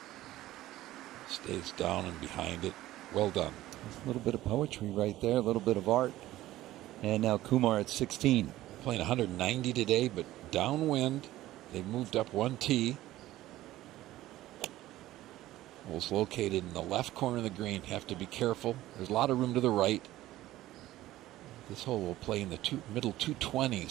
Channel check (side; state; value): left; quieter; 15.4 dB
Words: Stays down and behind it. Well done. There's a little bit of poetry right there, a little bit of art. And now Kumar at 16. Playing 190 today, but downwind. They moved up one tee. Hole's located in the left corner of the green. Have to be careful. There's a lot of room to the right. This hole will play in the middle